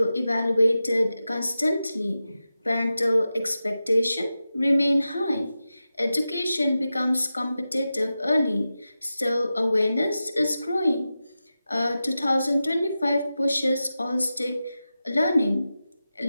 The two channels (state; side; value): inverted; both; correlation -0.92